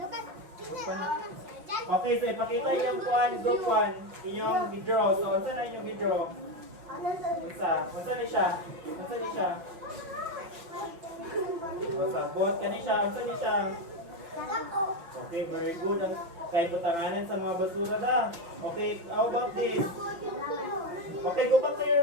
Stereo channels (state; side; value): late; left; 6.0 ms